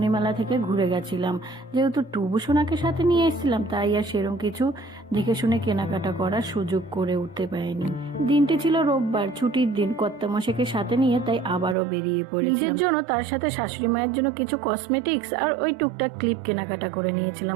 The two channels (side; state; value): left; drops out; at 11.8 s